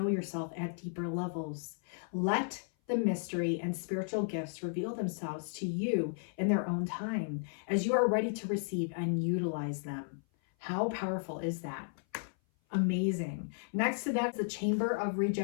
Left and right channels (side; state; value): right; silent; 55 dB below the other